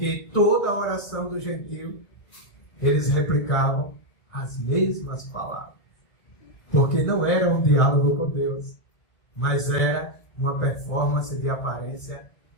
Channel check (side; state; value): right; late; 1.6 ms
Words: toda a oração do gentio, eles replicavam as mesmas palavras. Porque não era um diálogo com Deus, mas era uma performance de aparência